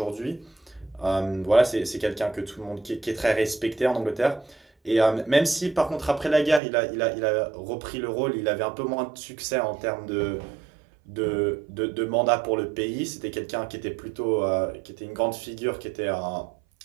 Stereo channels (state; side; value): drops out; left; at 6.6 s